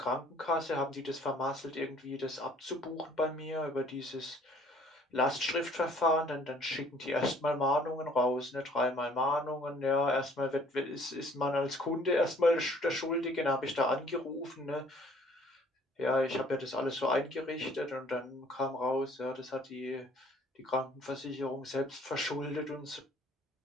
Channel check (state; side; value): normal; both; correlation 0.57